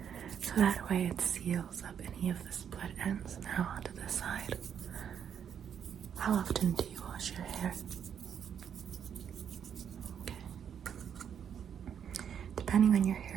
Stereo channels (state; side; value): quieter; left; 8.3 dB